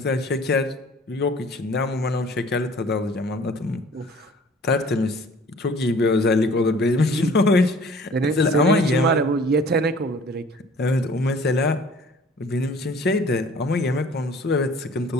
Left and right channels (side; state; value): both; normal; correlation 0.51